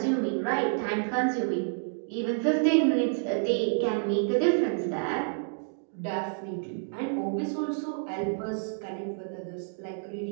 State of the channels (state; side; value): silent; left; digital silence